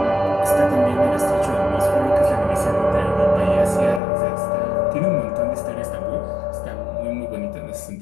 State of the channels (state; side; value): drops out; right; at 4.0 s